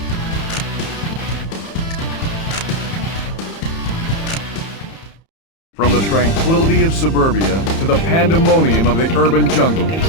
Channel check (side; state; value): right; late; 30 ms